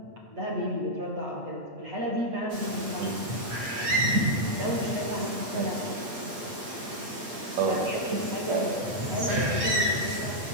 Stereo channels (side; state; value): left; late; 8.7 ms